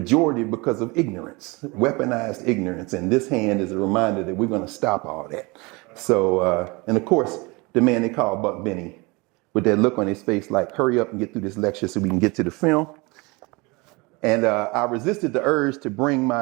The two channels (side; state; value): left; quieter; 26.0 dB